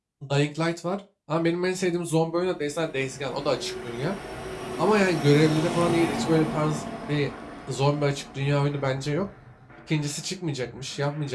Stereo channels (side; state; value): both; identical; correlation 1.00